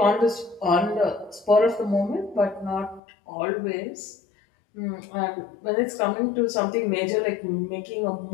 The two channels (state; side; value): drops out; right; at 3.0 s